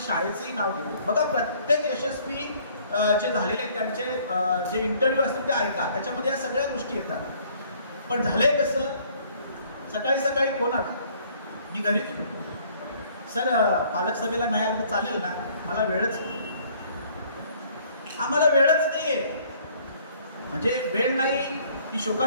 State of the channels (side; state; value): both; inverted; correlation -0.59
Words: नाव घेतो. बघा प्रत्येक यशस्वी जे झालेले आहेत त्यांचे जे इंटरव्ह्यू असतील ते ऐका, त्याच्यामध्ये या सगळ्या गोष्टी येतात. पण झालंय कसं, सकाळी सकाळी फोन आला, मी घरी सर पालक सभेला नाही आलं तर चालेल ना, मला वेळच नाही, आम्हाला वेळच नाहीये. म्हणजे वेळ नाही ही